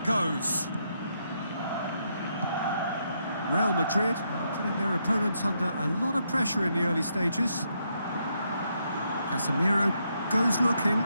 goes. Real Madrid putting their opponents under a lot of pressure in the early stages. Casemiro goes looking.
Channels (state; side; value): inverted; both; correlation -0.78